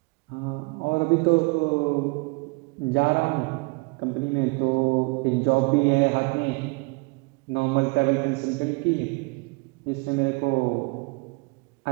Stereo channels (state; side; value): quieter; left; 29.0 dB